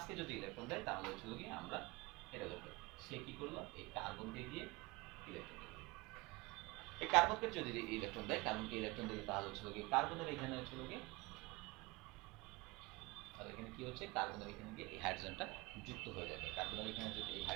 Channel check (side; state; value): left; quieter; 24.0 dB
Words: যদি ইলেকট্রন দেয় তাহলে হচ্ছে গিয়ে আমরা এটা লিখবো, সে কি করলো এই কার্বনকে দিয়ে ইলেকট্রন দিল। এই কার্বনকে যদি ইলেকট্রন দেয়, কার্বনকে ইলেকট্রন দিলে তাহলে হচ্ছে গিয়ে কার্বনের এখানে হচ্ছে গিয়ে, তাহলে এখানে কি হচ্ছে, কার্বনের এখানে গিয়ে এই হাইড্রোজেনটা যুক্ত হয়ে যাবে। কার্বনের এখানে যদি এই